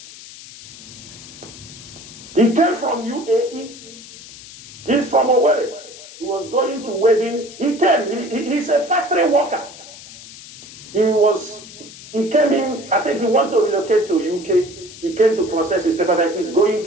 He came from UAE. He's from Nworu. He was going to wedding. He came. He's a factory worker. He came in. I think he wanted to relocate to UK. He came to process his paperwork. He's going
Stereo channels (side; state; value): left; noise; hiss, 17 dB below the sound